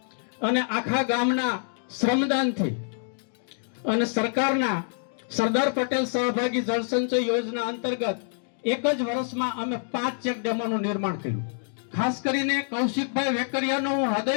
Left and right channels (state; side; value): silent; right; digital silence